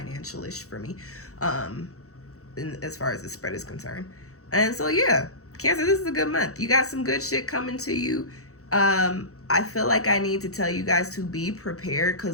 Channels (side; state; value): right; late; 0.65 ms